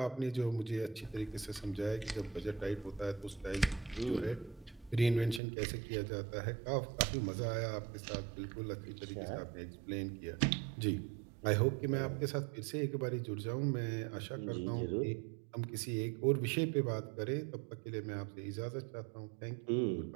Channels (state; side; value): drops out; left; at 5.4 s